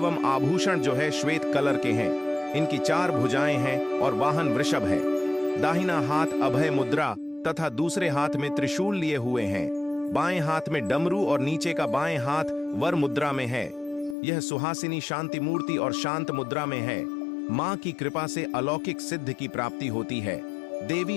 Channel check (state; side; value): drops out; right; at 14.2 s